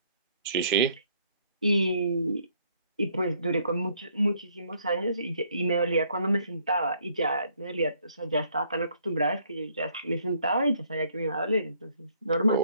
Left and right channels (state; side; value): inverted; both; correlation -0.66